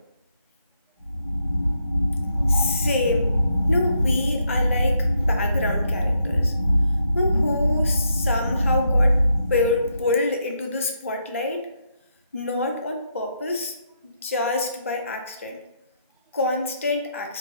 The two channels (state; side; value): inverted; both; correlation -0.78